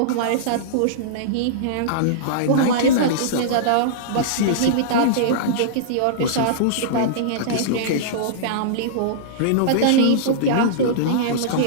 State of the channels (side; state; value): both; different; correlation -0.03